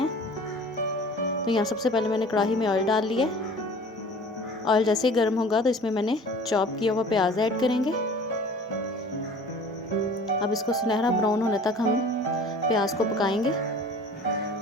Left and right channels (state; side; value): normal; both; correlation 0.45